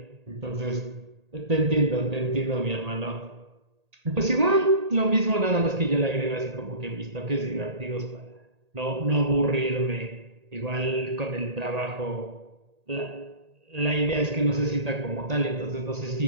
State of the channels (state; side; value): late; left; 1.8 ms